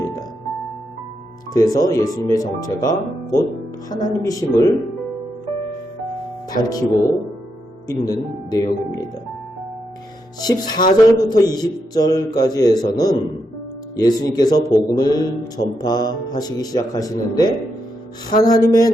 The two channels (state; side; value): normal; both; correlation 0.82